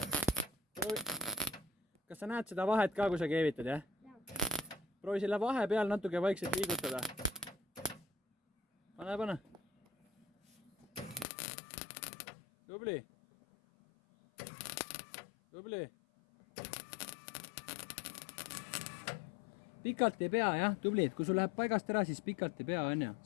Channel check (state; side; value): drops out; right; at 11.2 s